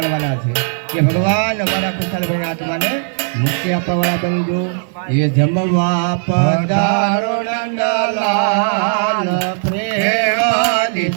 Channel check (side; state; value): left; silent; digital silence